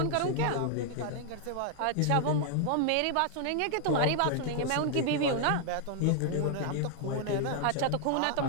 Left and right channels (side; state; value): both; different; correlation 0.00